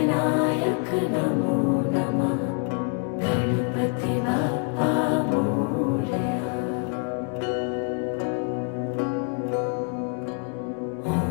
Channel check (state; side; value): quieter; right; 39.8 dB